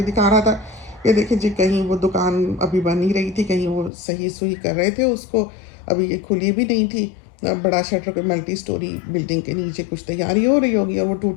دکھا رہا تھا کہ دیکھیں جی کہیں وہ دکان ابھی بن ہی رہی تھی، کہیں وہ صحیح سوئی کر رہے تھے اس کو، ابھی یہ کھلی بھی نہیں تھی. بڑا شٹر پہ ملٹی سٹوری بلڈنگ کے نیچے کچھ تیاری ہو رہی ہوگی، اور وہ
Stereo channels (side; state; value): right; drops out; at 3.9 s